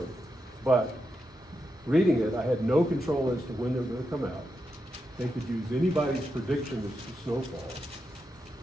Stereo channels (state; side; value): normal; both; correlation 0.86